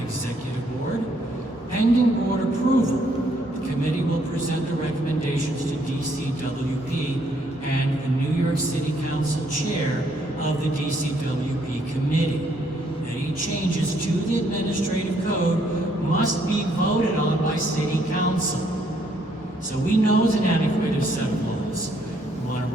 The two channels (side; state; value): both; normal; correlation 0.69